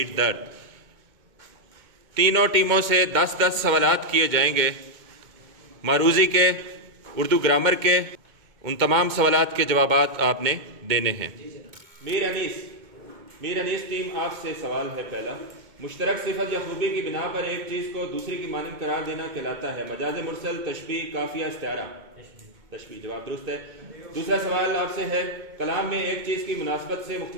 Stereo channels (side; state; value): left; late; 2.1 ms